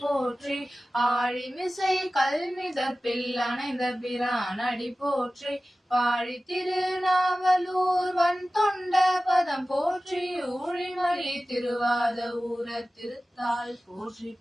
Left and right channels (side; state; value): both; normal; correlation 0.96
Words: போற்றி, ஆழிமிசை கல்மிதப்பில் அணைந்த பிரான் அடி போற்றி. பாழி திருநாவலூர் வன் தொண்ட பதம் போற்றி, ஊழிமலி திருவாத ஊர திருத்தாள் போற்றி